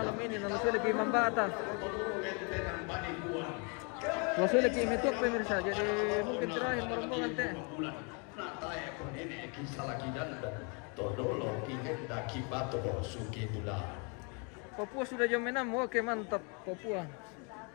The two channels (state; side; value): quieter; right; 34.9 dB